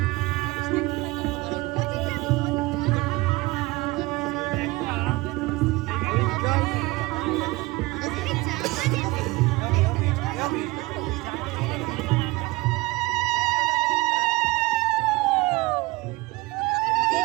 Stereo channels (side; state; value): left; quieter; 21.8 dB